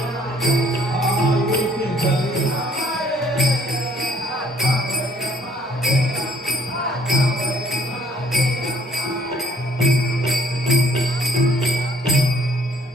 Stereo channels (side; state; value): both; normal; correlation 0.60